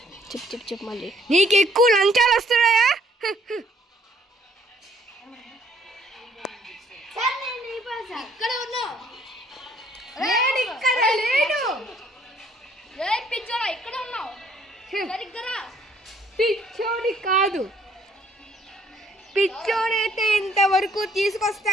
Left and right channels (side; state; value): both; normal; correlation 0.64